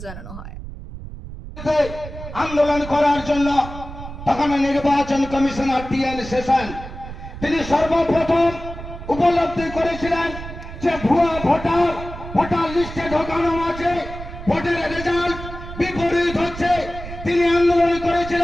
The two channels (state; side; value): noise; right; rumble, 11 dB below the sound